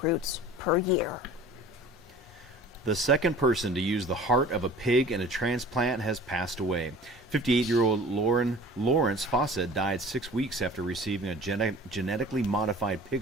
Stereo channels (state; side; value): normal; both; correlation 0.44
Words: per year. The second person to use the heart of a pig in a transplant has passed away. 58-year-old Lawrence Fawcett died 6 weeks after receiving a genetically modified